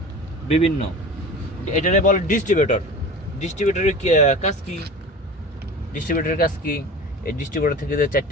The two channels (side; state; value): both; normal; correlation 0.35